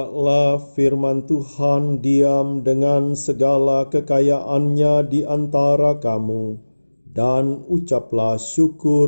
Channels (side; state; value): both; inverted; correlation -1.00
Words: firman Tuhan diam dengan segala kekayaannya di antara kamu, dan ucaplah